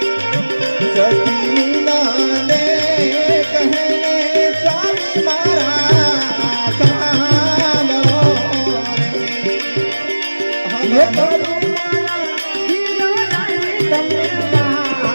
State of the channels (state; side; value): inverted; both; correlation -1.00